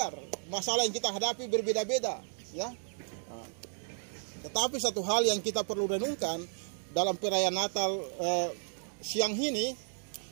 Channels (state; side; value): silent; left; 56 dB below the other